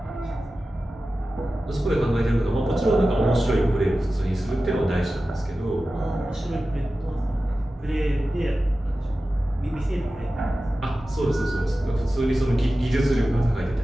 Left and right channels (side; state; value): both; normal; correlation 0.94